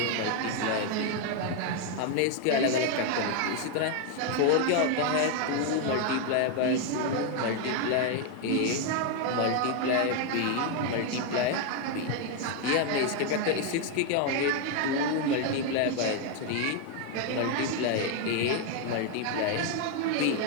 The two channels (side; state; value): both; different; correlation 0.01